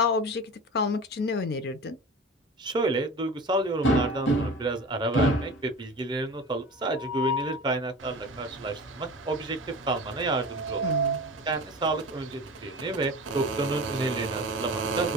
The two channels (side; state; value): both; normal; correlation 0.34